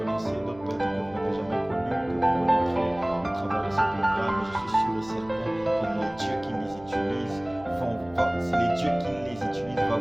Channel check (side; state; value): right; noise; hum, 21 dB below the sound